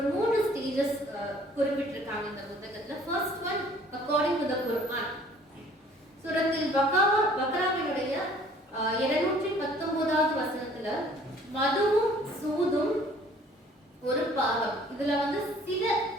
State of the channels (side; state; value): both; normal; correlation 0.55